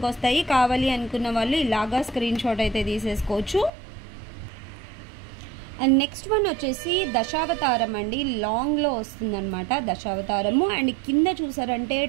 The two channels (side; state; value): left; drops out; at 3.7 s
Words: వస్తాయి. కావాలి అనుకున్న వాళ్ళు ఇలాగా స్క్రీన్ షాట్ అయితే తీసేసుకోవచ్చు. అండ్ నెక్స్ట్ వన్ వచ్చేసి దశావతారం అండి. లాంగ్లో వస్తుందన్నమాట దశావతారము. అండ్ కింద చూసారంటే